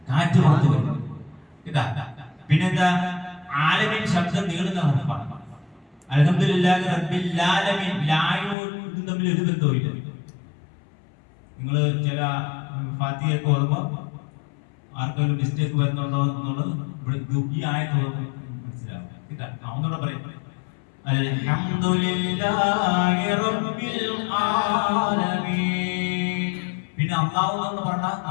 കാറ്റ് പുറത്തു വരും. ഇതാ പിന്നെന്താ? ആലമീൻ ശബ്ദം നീളുന്ന ഹർഫാണ്. അൽഹംദുലില്ലാഹി റബ്ബിൽ ആലമീൻ. ലായും തമ്മിൽ ഒരു ബന്ധവുമില്ല. നിങ്ങൾ ചില ഫാത്തിഹയൊക്കെ ഓർമ്മ ആർക്കെങ്കിലും മിസ്റ്റേക്ക് വരുന്നുണ്ടോ എന്നുള്ളത് ഇവിടെ ഈ ആയത്ത് മനസ്സിലാവും. ഒന്നുകൂടെ പറയും അൽഹംദുലില്ലാഹി റബ്ബിൽ ആലമീൻ. പിന്നെ അല്ലാഹു എന്ന് പറഞ്ഞ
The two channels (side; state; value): right; drops out; at 8.6 s